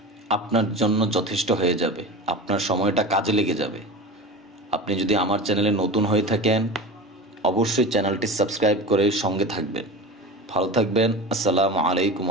আপনার জন্য যথেষ্ট হয়ে যাবে, আপনার সময়টা কাজে লেগে যাবে। আপনি যদি আমার চ্যানেলে নতুন হয়ে থাকেন, অবশ্যই চ্যানেলটি সাবস্ক্রাইব করে সঙ্গে থাকবেন। ভালো থাকবেন। আসসালামু আলাইকুম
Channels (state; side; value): normal; both; correlation 0.30